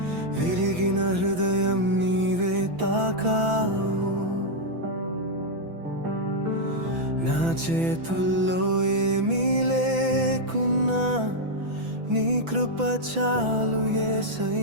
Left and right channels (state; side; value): late; left; 6.0 ms